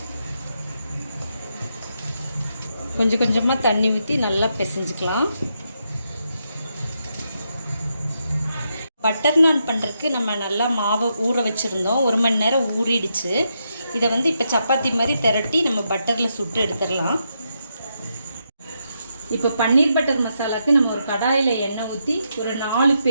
கொஞ்சம் கொஞ்சமாக தண்ணி ஊற்றி நல்லா பிசைஞ்சுக்கலாம். பட்டர் நான் பண்ணுறதுக்கு நம்ம நல்லா மாவை ஊற வச்சுருந்தோம். 1 மணி நேரம் ஊறிடுச்சு. இதை இப்போ சப்பாத்தி மாதிரி திரட்டி நம்ம பட்டரில் சுட்டு எடுத்துடலாம். இப்போ பன்னீர் பட்டர் மசாலாவுக்கு நம்ம ஒரு கடாயில் எண்ணெய் ஊற்றி ஒரு 4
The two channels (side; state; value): both; inverted; correlation -0.82